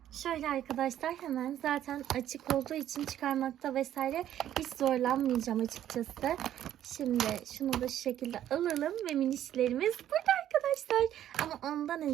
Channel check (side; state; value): left; quieter; 11.5 dB